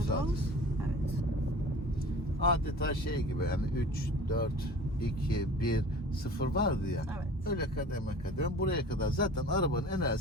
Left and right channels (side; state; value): both; normal; correlation 0.41